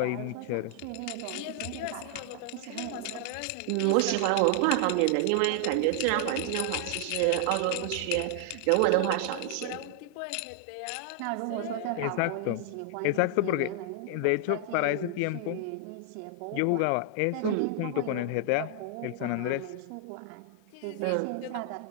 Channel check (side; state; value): both; different; correlation 0.00